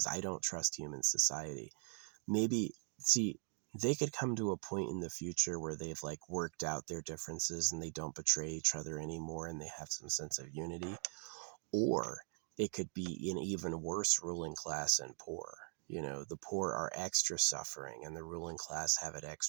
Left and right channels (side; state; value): left; silent; 51 dB below the other